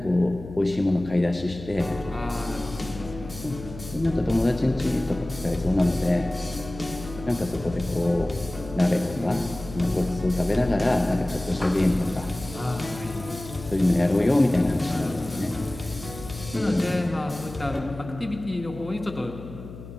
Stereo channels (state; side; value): noise; left; hum, 14 dB below the sound